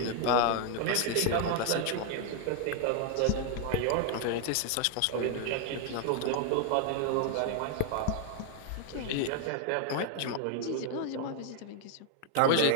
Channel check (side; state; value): both; different; correlation 0.00